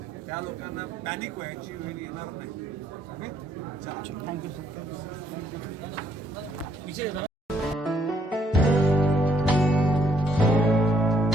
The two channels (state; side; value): normal; both; correlation 0.69